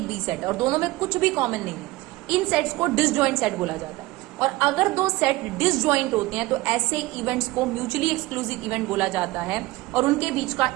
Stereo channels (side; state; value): left; quieter; 19.9 dB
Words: बी सेट है और दोनों में कुछ भी कॉमन नहीं है। इन सेट्स को डिसजॉइंट सेट बोला जाता है। और अगर 2 सेट डिसजॉइंट होते हैं तो ऐसे इवेंट्स को म्यूचुअली एक्सक्लूसिव इवेंट बोला जाता है, और उनके बीच का